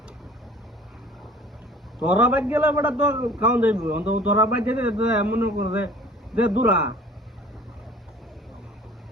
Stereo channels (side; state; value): both; normal; correlation 0.48